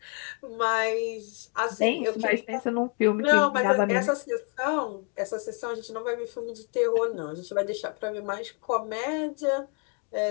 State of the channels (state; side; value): quieter; right; 37.3 dB